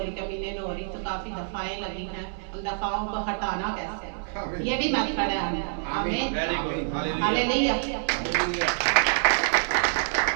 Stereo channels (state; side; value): silent; left; 60 dB below the other